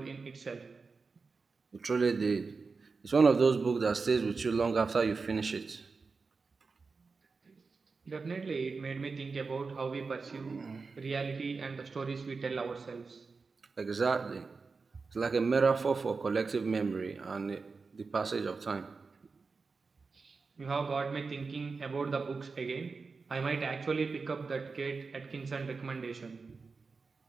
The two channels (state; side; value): quieter; left; 4.5 dB